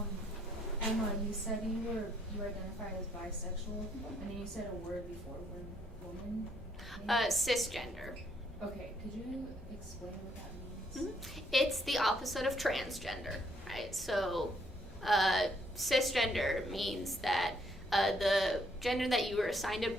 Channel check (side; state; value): both; normal; correlation 0.69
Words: Emma, you said you identified as bisexual, and then you said a word before, woman? Cisgender. Okay, could you explain what that means? Mm-hmm. It's the opposite of transgender, right? So cisgender means that the gender that you were assigned at